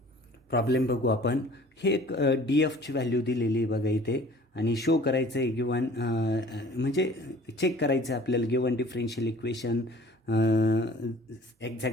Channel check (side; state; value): both; normal; correlation 0.49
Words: प्रॉब्लेम बघू आपण. हे एक डी एफची व्हॅल्यू दिलेली बघा इथे आणि शो करायचं आहे गिव्हन, म्हणजे चेक करायचं आहे आपल्याला given differential equation